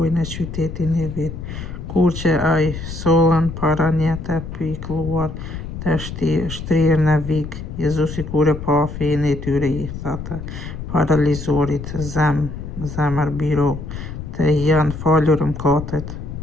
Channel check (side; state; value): left; noise; rumble, 8 dB below the sound